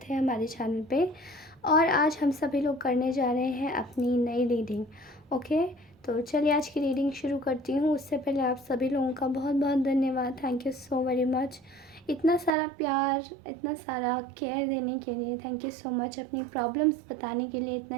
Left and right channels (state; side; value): drops out; left; at 12.5 s